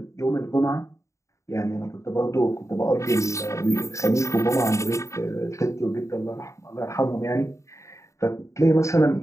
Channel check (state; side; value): late; right; 0.14 ms